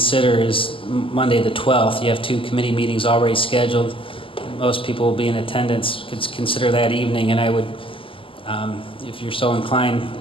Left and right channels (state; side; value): late; right; 0.25 ms